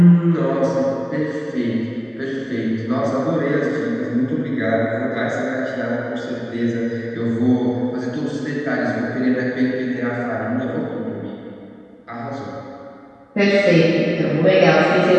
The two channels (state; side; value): identical; both; correlation 1.00